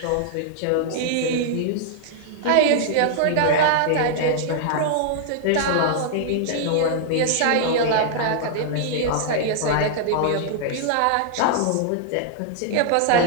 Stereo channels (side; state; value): both; different; correlation -0.01